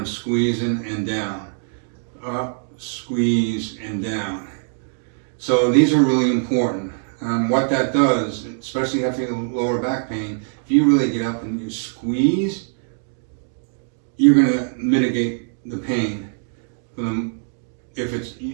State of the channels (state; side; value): silent; left; digital silence